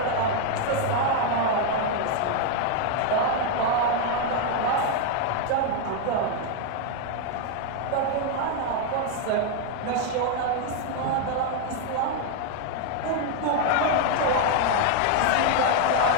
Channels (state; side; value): different; both; correlation 0.01